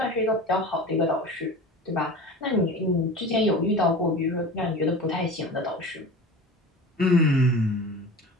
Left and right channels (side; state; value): both; normal; correlation 0.35